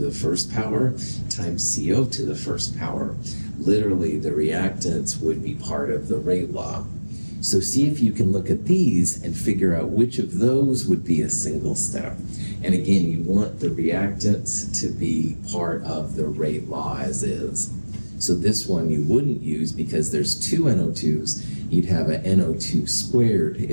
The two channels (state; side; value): inverted; both; correlation -1.00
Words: first power times CO to the first power. Literally, the reactants would be part of the rate law. So see if you can look at these and figure out which of those would be a single step. And again, you want the reactants to be part of the rate law as is. So this one you wouldn't use because there's two NO2s. You'd have a NO2 squared